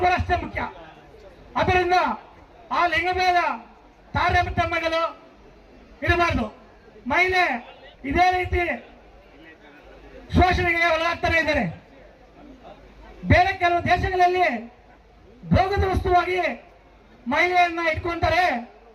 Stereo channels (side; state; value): both; identical; correlation 1.00